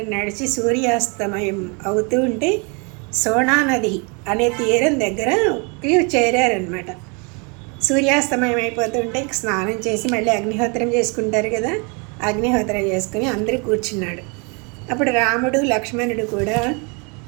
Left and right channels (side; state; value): left; quieter; 32.9 dB